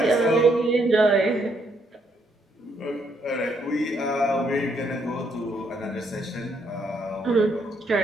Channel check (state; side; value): normal; both; correlation 0.73